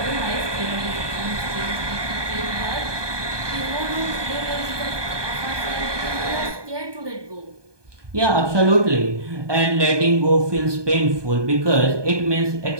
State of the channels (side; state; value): left; late; 1.2 ms